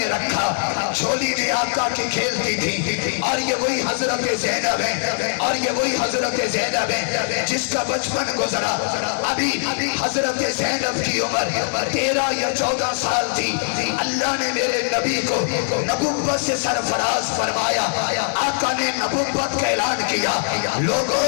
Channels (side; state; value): right; silent; 65 dB below the other